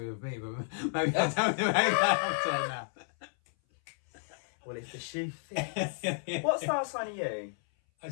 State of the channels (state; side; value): silent; right; 57 dB below the other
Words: with me, but maybe I don't know that now. Well, if the shoe fits. What star sign are you? I